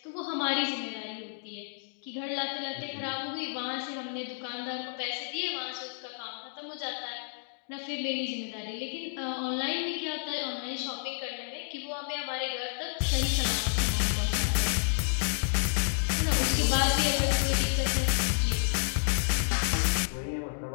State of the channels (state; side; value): silent; right; digital silence